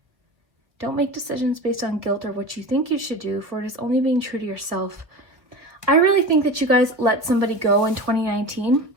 Don't make decisions based on guilt or what you think you should do, for it is only being true to yourself. I really think that you guys let somebody go in 2019,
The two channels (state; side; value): late; left; 1.2 ms